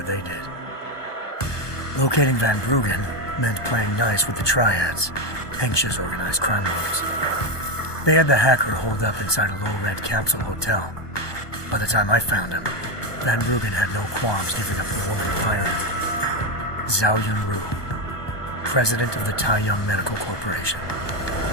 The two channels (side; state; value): right; late; 1.2 ms